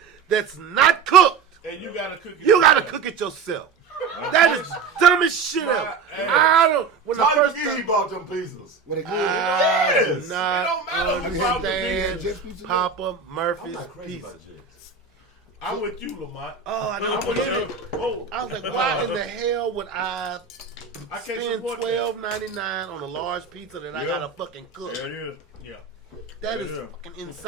that's not cooked. pay. And you gotta cook it. You gotta cook it yourself. That is dumbest shit ever. I don't. When the How first you time, bought them pizzas? When it good. I Yes. do It not don't matter who bought the understand pizza. Just Papa I'm Murphy's not crazy pizza. about Jets. I'm with you, Lamont. Oh, I I'm don't with get you. it. Oh, I was like, why in the hell would I I can't spend support that. $12.99 on a large pizza that I gotta fucking cook? There it is. Yeah. That is Yeah. fucking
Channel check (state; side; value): quieter; left; 5.6 dB